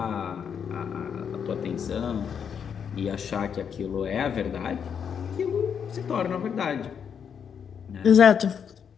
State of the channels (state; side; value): quieter; right; 7.4 dB